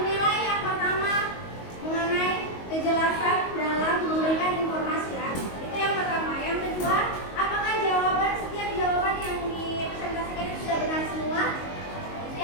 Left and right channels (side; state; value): right; late; 22 ms